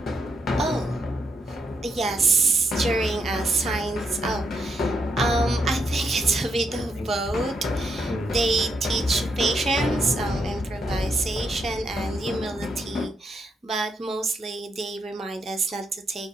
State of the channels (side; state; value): both; normal; correlation 0.78